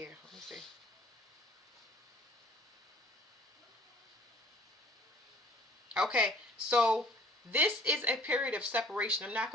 Let me see. Okay, so this is a period of separation. I'm not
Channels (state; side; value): normal; both; correlation 0.54